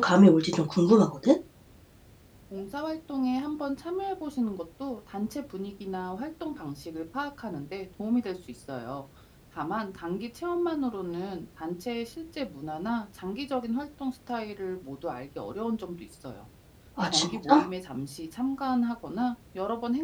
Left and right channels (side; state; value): both; identical; correlation 1.00